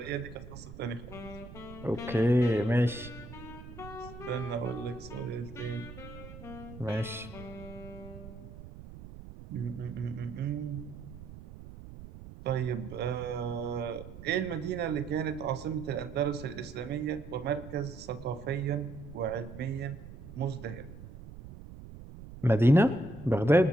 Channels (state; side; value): noise; right; rumble, 14 dB below the sound